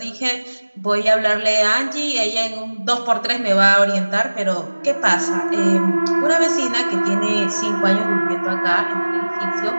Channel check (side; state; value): both; inverted; correlation -1.00